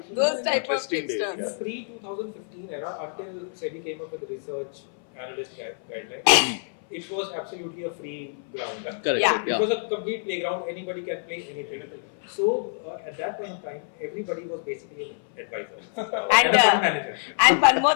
Those type of Interesting tipsters. days, Pre-2015 era, until SEBI came up with the research analyst guidelines, it was absolutely a free ground. Correct. Yeah. It was a complete playground. Anybody can play anything. So at that point in time, everybody was basically an advisor And, a fund manager. And one more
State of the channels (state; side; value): silent; right; 58 dB below the other